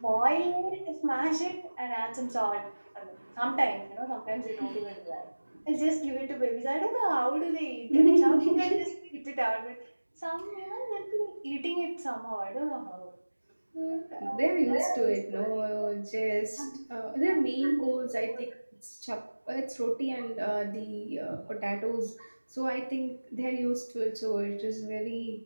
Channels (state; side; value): inverted; both; correlation -1.00